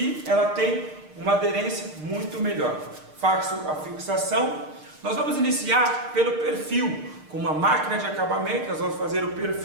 ela tem uma aderência muito melhor. Faço a fixação. Nós vamos iniciar pelo perfil. Com uma máquina de acabamento, nós vamos fazer o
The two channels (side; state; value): left; late; 6.6 ms